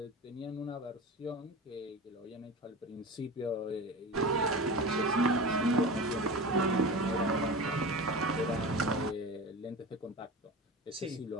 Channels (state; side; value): normal; both; correlation 0.31